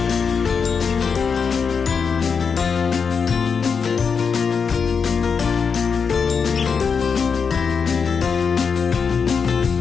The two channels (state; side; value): quieter; right; 5.9 dB